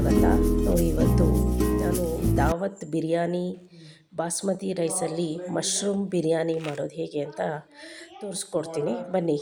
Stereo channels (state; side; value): identical; both; correlation 1.00